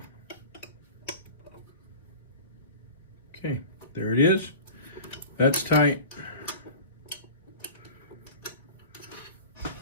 Okay, there it is. That's tight.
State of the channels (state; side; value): inverted; both; correlation -0.37